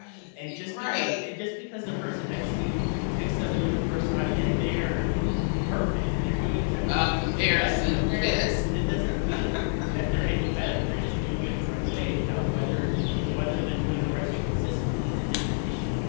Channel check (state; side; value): silent; right; digital silence